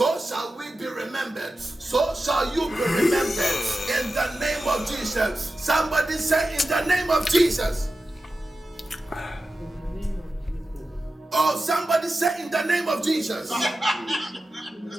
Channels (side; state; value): both; normal; correlation 0.93